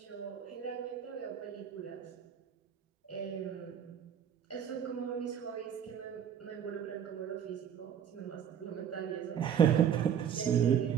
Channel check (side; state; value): left; quieter; 8.7 dB